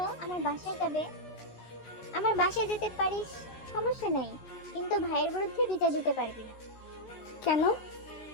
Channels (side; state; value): right; late; 13 ms